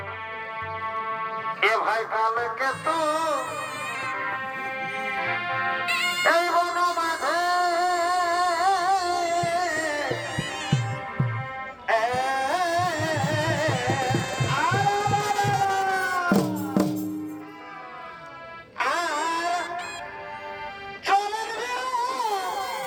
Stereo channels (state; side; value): identical; both; correlation 1.00